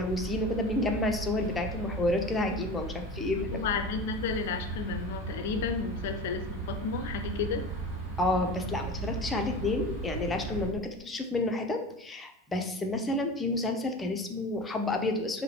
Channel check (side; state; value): both; normal; correlation 0.32